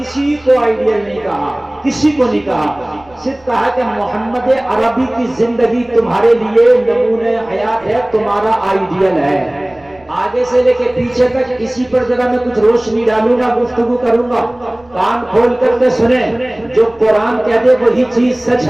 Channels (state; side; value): noise; right; rumble, 29 dB below the sound